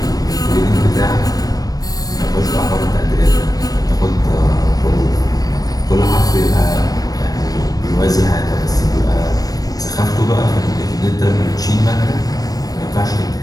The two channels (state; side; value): late; right; 0.18 ms